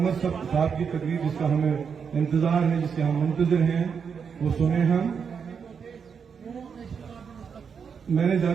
صاحب کی تقریر جس کا ہمیں انتظار ہے، جس کے ہم منتظر ہیں، وہ سنیں ہم۔ میں نے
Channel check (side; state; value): left; quieter; 6.5 dB